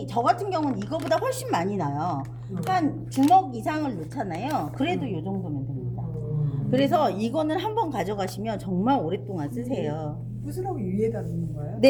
저 같은 경우는 이거보다 훨씬 많이 나요. 한 주먹 이상을 넣잖아요. 그래도 이 정도면 됩니다. 그래서 이거는 한번 가져가시면 정말 오랫동안 쓰세요. 부스러기 위에다 넣는 거예요?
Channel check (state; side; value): identical; both; correlation 1.00